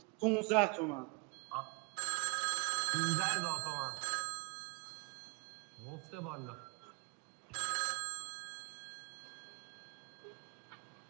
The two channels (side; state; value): left; quieter; 30.0 dB